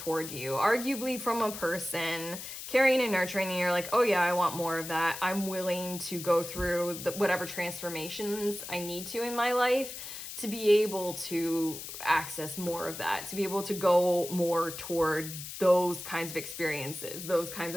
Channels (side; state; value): left; noise; hiss, 9 dB below the sound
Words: you, arguably from a person caring and nurturing, and you're like, oh yeah, I want more of that. I'm willing to go through whatever transformations I need to in my life to be able to access more of that, to be able to go more toward those kinds of experiences, those kinds